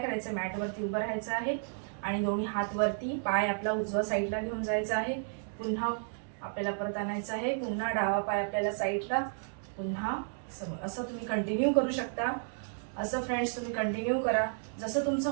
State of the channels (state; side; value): silent; left; digital silence